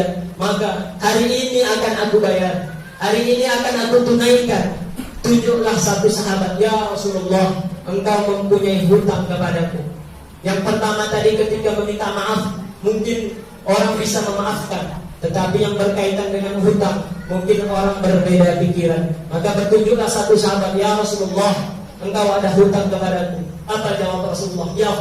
maka hari ini akan aku bayar, hari ini akan aku tunaikan. Tunjuklah satu sahabat, ya Rasulullah, engkau mempunyai hutang kepadaku. Yang pertama tadi ketika meminta maaf, mungkin orang bisa memaafkan, tetapi yang berkaitan dengan hutang, mungkin orang berbeda pikiran. Maka bertunjuklah satu sahabat, ya Rasulullah, engkau ada hutang kepadaku. Apa jawab Rasulullah? Ya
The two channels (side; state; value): both; identical; correlation 1.00